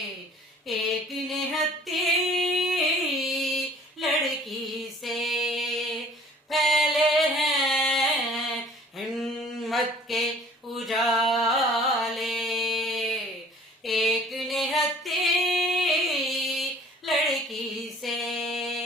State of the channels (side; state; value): both; normal; correlation 0.52